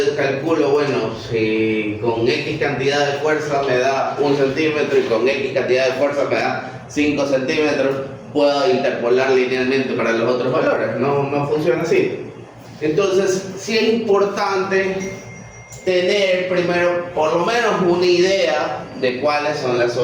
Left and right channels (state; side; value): identical; both; correlation 1.00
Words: calculo, bueno, si con X cantidad de fuerza me da 1 centímetro y con X cantidad de fuerza me da 5 centímetros, puedo interpolar linealmente para los otros valores. No funciona así. Entonces sí es importante tener primero por lo menos una idea de cuáles son las